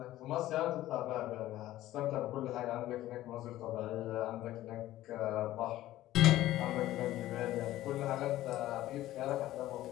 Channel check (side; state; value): right; quieter; 14.8 dB